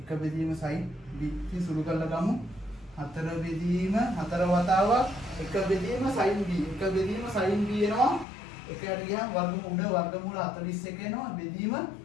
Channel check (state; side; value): drops out; right; at 8.2 s